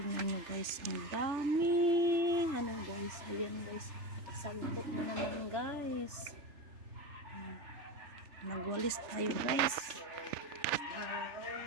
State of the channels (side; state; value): left; late; 3.4 ms